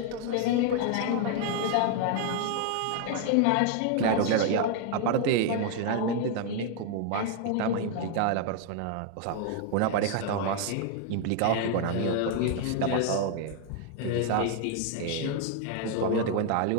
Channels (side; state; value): both; different; correlation 0.00